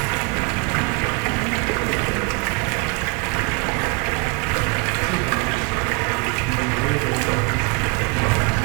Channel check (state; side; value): quieter; left; 31.4 dB